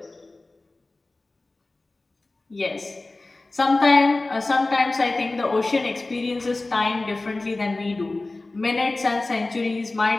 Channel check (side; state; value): right; quieter; 3.1 dB